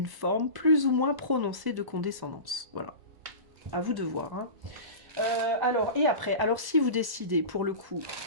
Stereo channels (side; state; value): left; late; 1.0 ms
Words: forme plus ou moins prononcée de condescendance. Voilà. À vous de voir. Hein. Alors, et après, alors si vous décidez, pour le coup,